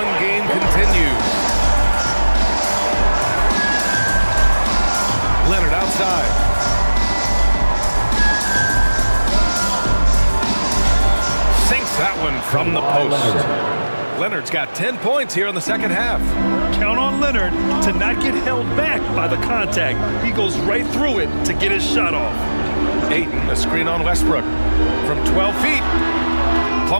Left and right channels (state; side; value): inverted; both; correlation -1.00